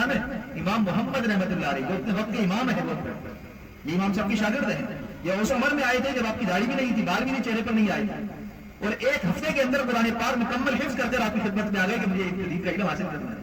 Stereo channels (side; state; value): both; identical; correlation 1.00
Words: ہے؟ امام محمد رحمت اللہ علیہ، جو اپنے وقت کے امام ہے، یہ امام صاحب کی شاگرد ہیں، یہ اس عمر میں آئے تھے جب آپ کی داڑھی بھی نہیں تھی، بال بھی نہیں چہرے پر نہیں آئے تھے، اور ایک ہفتے کے اندر قرآن پاک مکمل حفظ کر کر آپ کی خدمت میں آ گئے کہ مجھے دین کا علم حاصل کرنا